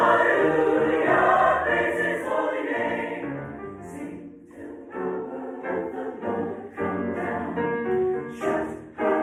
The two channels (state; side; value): identical; both; correlation 1.00